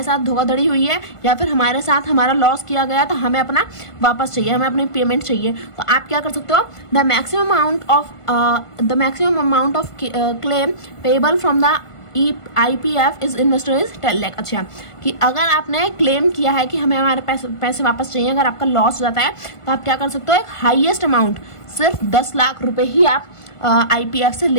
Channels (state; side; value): late; right; 1.5 ms